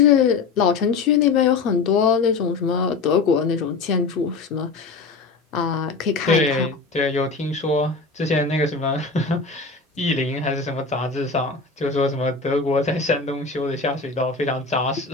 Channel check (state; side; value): quieter; right; 4.4 dB